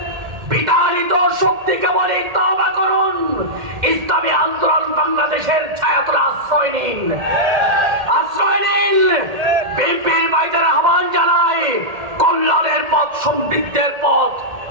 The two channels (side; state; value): left; late; 1.8 ms